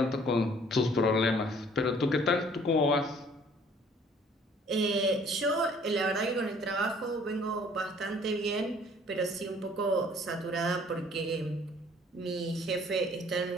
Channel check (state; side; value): normal; both; correlation 0.56